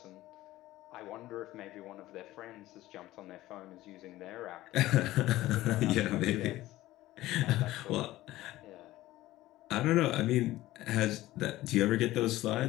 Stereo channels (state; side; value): quieter; right; 16.3 dB